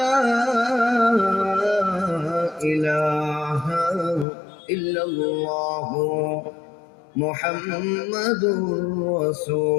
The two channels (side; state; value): right; drops out; at 4.2 s